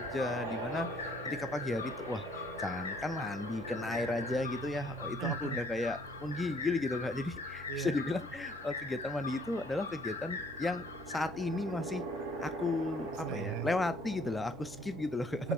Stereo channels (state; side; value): normal; both; correlation 0.62